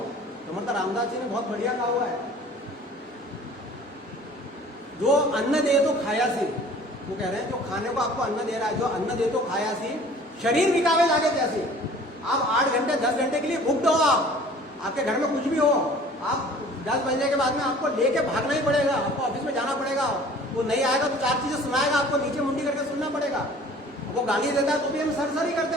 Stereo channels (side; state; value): both; normal; correlation 0.49